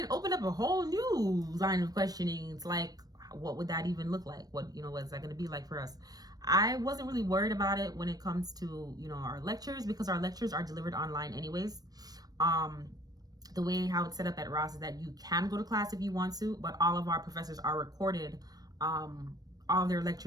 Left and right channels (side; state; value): left; late; 0.19 ms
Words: opened up a whole new line of questioning. It's like, what would that even look like? What's that going to be like for us? I wasn't really worried about it when it comes to, our lectures, because our lectures are delivered online anyways. The way how it's set up at Ross is that you can go to class if you want to, but all of our professors are recorded. All of their